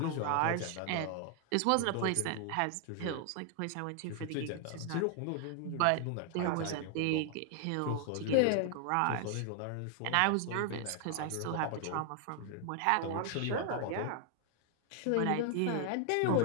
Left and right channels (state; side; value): different; both; correlation 0.00